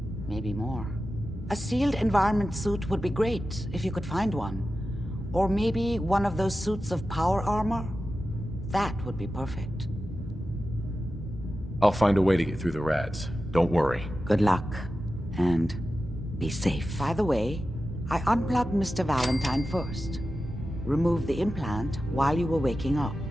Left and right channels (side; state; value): both; normal; correlation 0.93